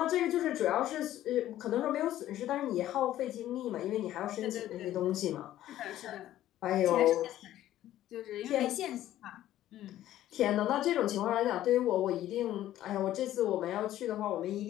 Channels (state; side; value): quieter; right; 13.3 dB